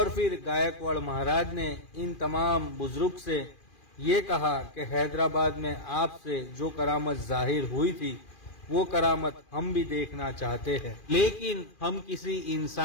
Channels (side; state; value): right; late; 2.4 ms